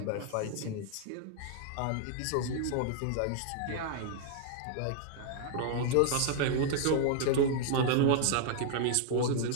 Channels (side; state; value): both; different; correlation 0.00